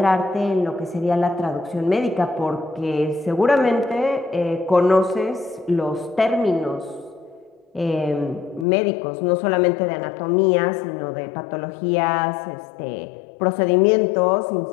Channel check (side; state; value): right; drops out; at 8.7 s